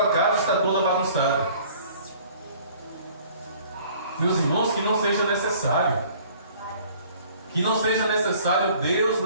casa está toda bagunçada. Meus irmãos, que não seja necessário. Que não seja necessário Deus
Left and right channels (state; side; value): inverted; both; correlation -0.53